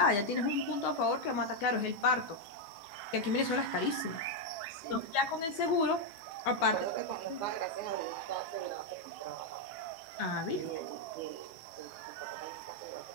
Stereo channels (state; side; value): late; right; 15 ms